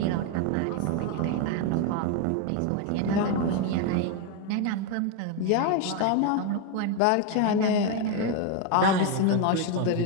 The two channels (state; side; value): different; both; correlation 0.01